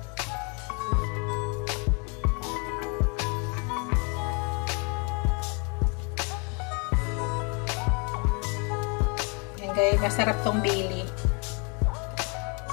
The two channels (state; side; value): quieter; right; 33.7 dB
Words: Guys, masarap tong bili.